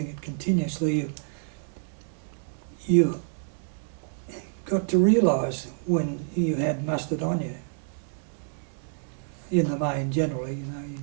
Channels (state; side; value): silent; left; digital silence